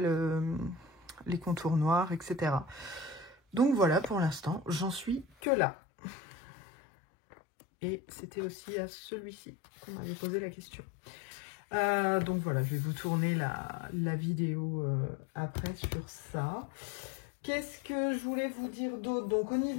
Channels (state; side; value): drops out; right; at 5.4 s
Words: contours noirs, etc. Donc, voilà, pour l'instant, j'en suis que là. Et c'était aussi à celui-ci qu'on m'avait posé la question. Donc voilà, je vais vous tourner la vidéo après sur ça. Qu'est-ce que je voulais vous dire d'autre? Donc au